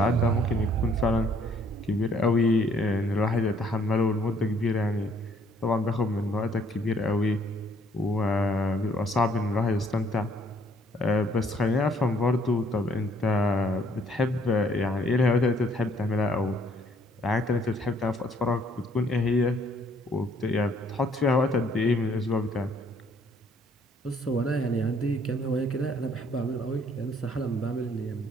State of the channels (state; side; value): normal; both; correlation 0.63